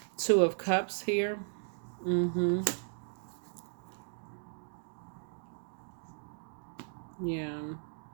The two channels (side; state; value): left; silent; digital silence